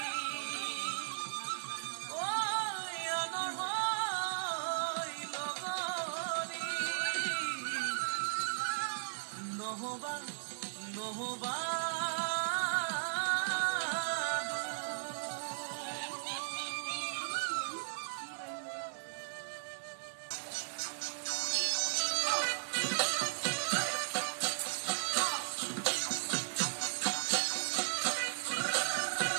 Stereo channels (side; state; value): left; silent; digital silence